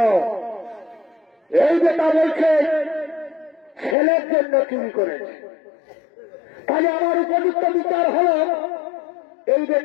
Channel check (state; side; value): drops out; right; at 4.0 s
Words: এই বেটা বলছে ছেলের জন্য চুরি করেছে, তাহলে আমার উপযুক্ত বিচার হলো এই